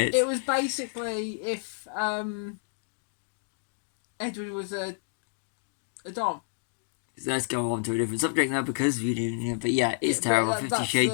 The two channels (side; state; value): right; silent; digital silence